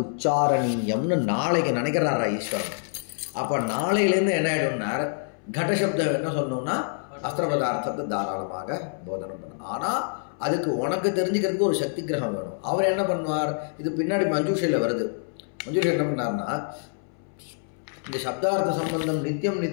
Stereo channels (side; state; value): right; silent; 61 dB below the other